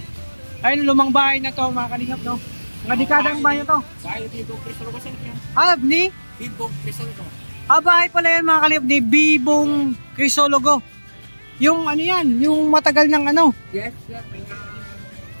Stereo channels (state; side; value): inverted; both; correlation -1.00